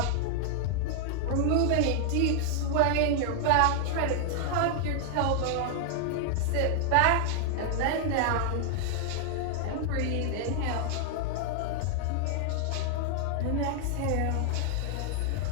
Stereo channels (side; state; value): both; different; correlation 0.00